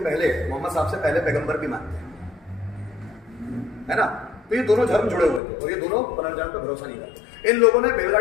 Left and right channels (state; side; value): drops out; right; at 5.4 s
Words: पहले, मोहम्मद साहब से पहले पैगंबर भी मानते हैं, है ना? तो ये दोनों धर्म जुड़े हुए थे और ये दोनों पुनर्जन्म पर भरोसा नहीं करते। इन लोगों ने